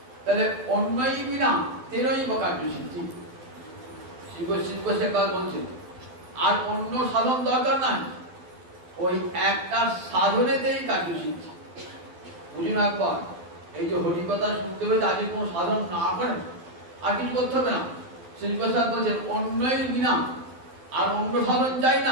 তাহলে অন্যই বিনা তেরোই কার্য সিদ্ধি। বলছেন আর অন্য সাধন দরকার নাই, ওই একটা সাধনেতেই কার্য সিদ্ধি। বুঝুন একবার, এই যে হরিকথা শুনতে হবে তাদের কোনো সাধন না করেন আর কিছু করতে হবে না। শ্রীপ্রসাদ বলছেন অন্যই বিনা, আর অন্য সাধন চাই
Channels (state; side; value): late; left; 12 ms